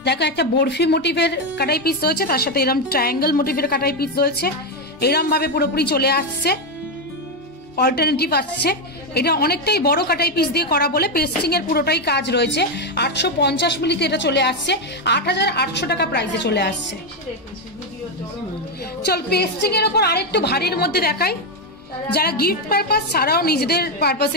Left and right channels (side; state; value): both; normal; correlation 0.06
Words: দেখো একটা বরফি মোটিভের কাটাই পিস রয়েছে, তার সাথে এরকম ট্রায়াঙ্গেল মোটিভের কাটাই পিস রয়েছে, এরকম ভাবে পুরোপুরি চলে আসছে, অল্টারনেটিভ আসছে। এটা অনেকটাই বড় কাটাই পিস দিয়ে করা বলে পেস্টিং এর পুরোটাই কাজ রয়েছে। 850 মিলিতে এটা চলে আসছে, 8800 টাকা প্রাইসে চলে আসছে। চল পেস্টিং এর উপর আরেকটু ভারীর মধ্যে দেখাই। যারা গিফট পারপাস ছাড়াও নিজেদের